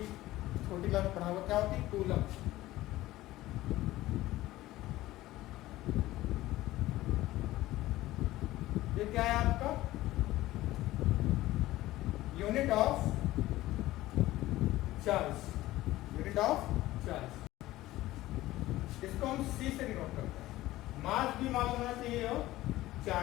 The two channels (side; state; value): right; quieter; 16.6 dB